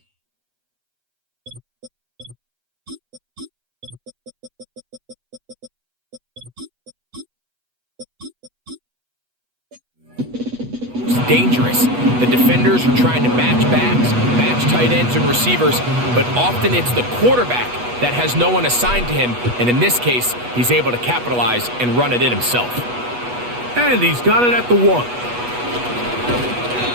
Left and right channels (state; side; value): late; left; 8.2 ms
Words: dangerous. The defenders are trying to match backs, match tight ends and receivers, but often it's the quarterback that has no one assigned to him, and in this case, he's able to capitalize and run it in himself. And he's got it at the 1.